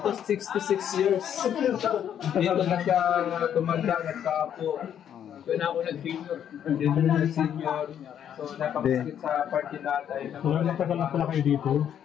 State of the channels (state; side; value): quieter; right; 9.4 dB